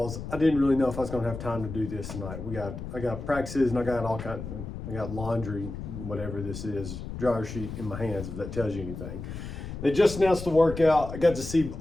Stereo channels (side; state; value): left; noise; rumble, 8 dB below the sound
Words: I didn't really know if I was going to have time to do this tonight. I got practices and I got I got laundry, whatever this is, dryer sheet in my hands, if that tells you anything. They just announced the workout. I got to see